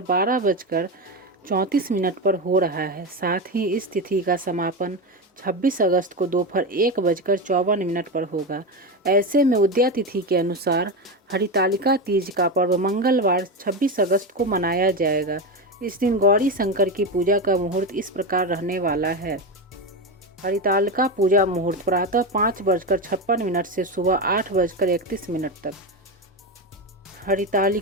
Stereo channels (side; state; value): both; normal; correlation 0.16